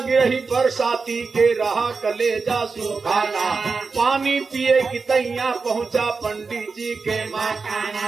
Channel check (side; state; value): left; quieter; 4.6 dB